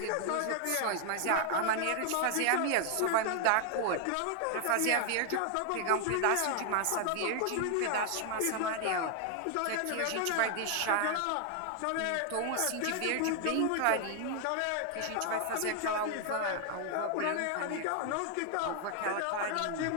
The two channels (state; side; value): different; both; correlation 0.00